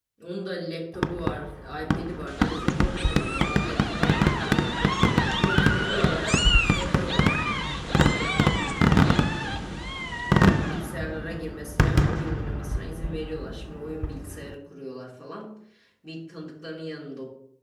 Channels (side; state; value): both; identical; correlation 1.00